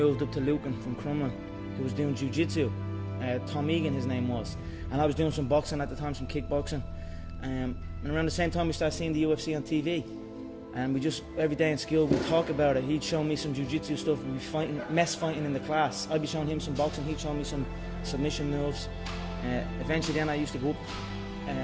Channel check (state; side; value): identical; both; correlation 1.00